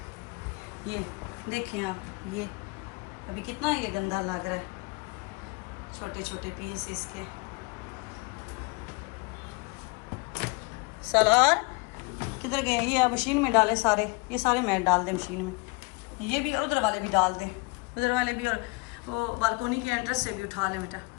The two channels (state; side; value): quieter; right; 27.7 dB